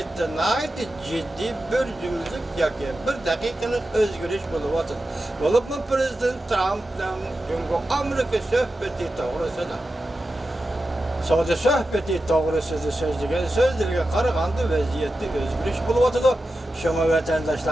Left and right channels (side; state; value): both; normal; correlation 0.92